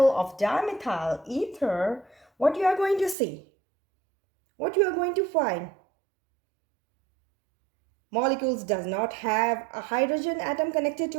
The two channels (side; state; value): left; drops out; at 3.2 s